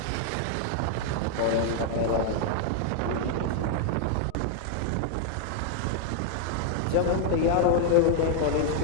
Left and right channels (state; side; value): different; both; correlation 0.00